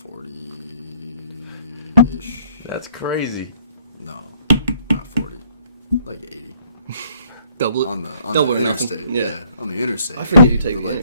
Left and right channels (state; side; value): inverted; both; correlation -0.64